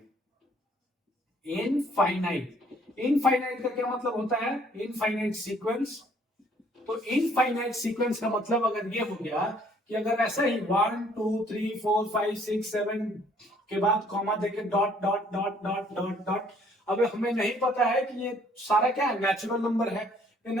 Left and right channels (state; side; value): normal; both; correlation 0.61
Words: इनफाइनाइट, इनफाइनाइट का क्या मतलब होता है? Infinite sequence. तो इनफाइनाइट सीक्वेंस का मतलब अगर ये हो गया कि अगर ऐसा ही 1 2 3 4 5 6 7 के बाद कॉमा देके dot dot dot dot dot dot, अब हमें नहीं पता है कि ये सारा क्या है? नेचुरल नंबर है। ये